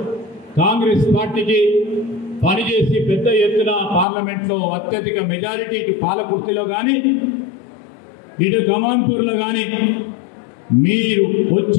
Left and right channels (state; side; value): drops out; right; at 4.0 s